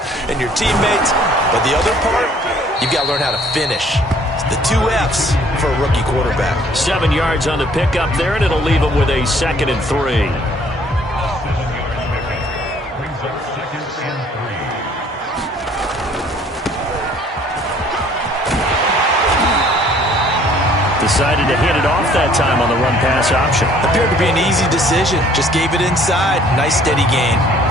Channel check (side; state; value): both; normal; correlation 0.58